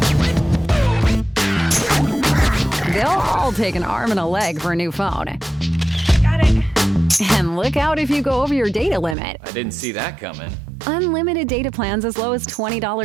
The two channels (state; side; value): drops out; left; at 9.2 s